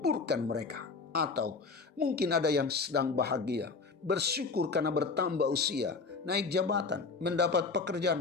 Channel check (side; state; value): right; quieter; 4.4 dB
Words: mereka. Atau mungkin ada yang sedang bahagia, bersyukur karena bertambah usia, naik jabatan, mendapat